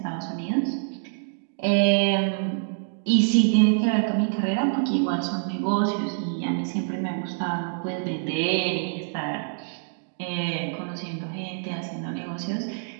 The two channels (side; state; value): left; silent; digital silence